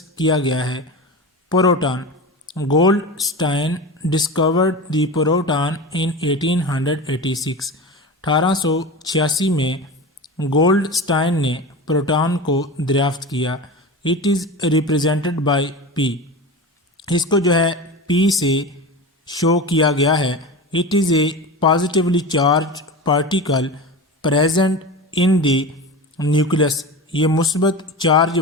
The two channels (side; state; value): both; normal; correlation 0.28